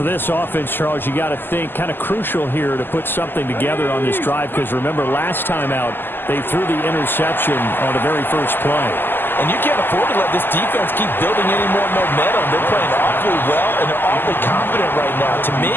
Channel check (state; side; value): late; right; 0.096 ms